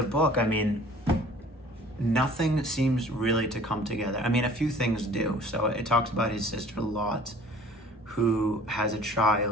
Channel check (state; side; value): normal; both; correlation 0.50